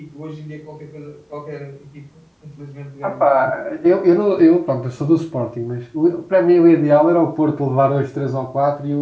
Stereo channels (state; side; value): identical; both; correlation 1.00